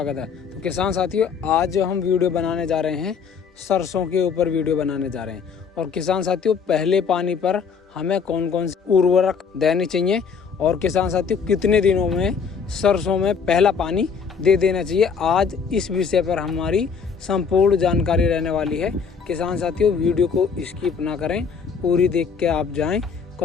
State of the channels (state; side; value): quieter; right; 6.1 dB